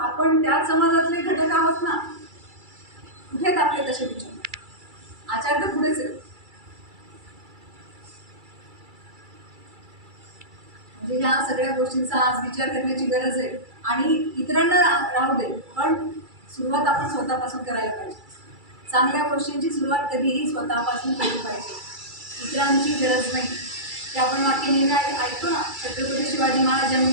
त्या समाजातले घटक आहोत ना, कुठेच आपले तसे विचार? आचार तर पुढेच आहेत. म्हणजे ह्या सगळ्या गोष्टींचा आज विचार करण्याची गरज आहे. आणि इतरांना राहू दे, पण सुरुवात आपण स्वतःपासून करायला पाहिजे. चांगल्या गोष्टींची सुरुवात कधीही स्वतःपासून केली पाहिजे, इतरांची गरज नाही. ते आपण वाक्य नेहमी ऐकतो ना, छत्रपती शिवाजी महाराज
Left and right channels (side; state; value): left; late; 2.3 ms